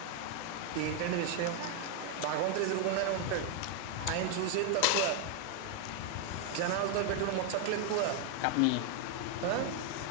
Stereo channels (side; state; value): both; different; correlation 0.00